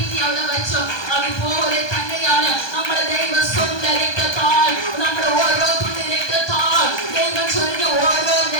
അവിടെ വെച്ചു. അതുപോലെ തന്നെയാണ് നമ്മുടെ ദൈവം സ്വന്തം രക്തത്താൽ നമ്മുടെ ഓരോ തുള്ളി രക്തത്താൽ ദൈവം ചൊരിഞ്ഞ ഓരോ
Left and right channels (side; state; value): right; late; 1.2 ms